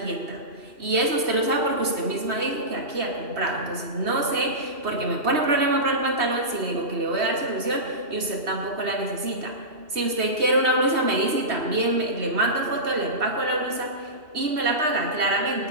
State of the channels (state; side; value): late; left; 3.2 ms